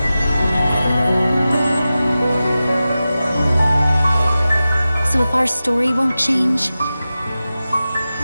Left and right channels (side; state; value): both; inverted; correlation -0.94